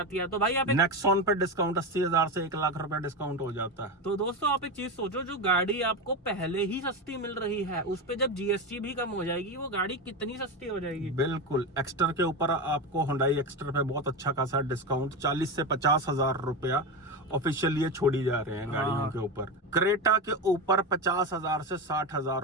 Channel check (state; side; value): normal; both; correlation 0.17